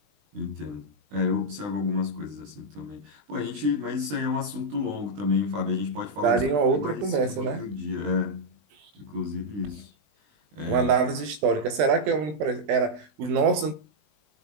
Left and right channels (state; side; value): late; left; 20 ms